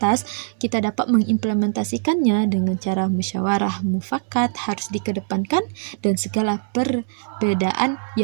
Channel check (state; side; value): silent; left; 64 dB below the other